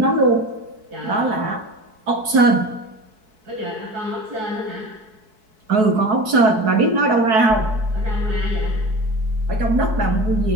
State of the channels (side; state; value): left; late; 4.6 ms